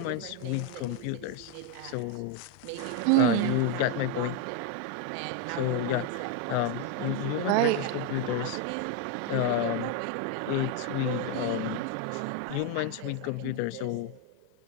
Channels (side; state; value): both; different; correlation 0.01